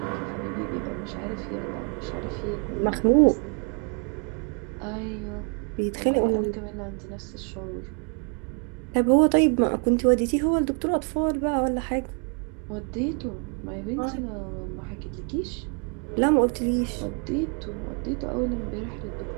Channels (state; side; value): quieter; left; 38.9 dB